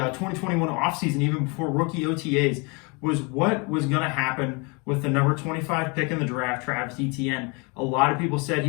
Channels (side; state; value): right; quieter; 30.7 dB